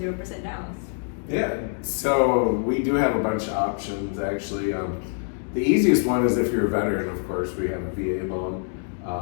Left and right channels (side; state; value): right; silent; 56 dB below the other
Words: 0% down. Yeah, so we do have a bunch of options actually. The easiest one is if you're a veteran, of course, we have a VA loan.